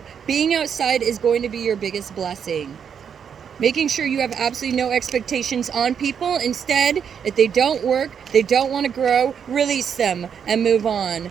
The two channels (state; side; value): quieter; left; 7.5 dB